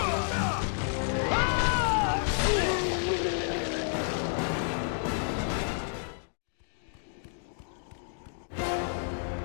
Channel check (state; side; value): silent; right; digital silence